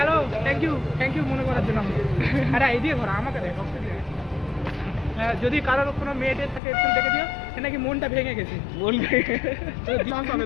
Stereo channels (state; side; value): drops out; right; at 6.6 s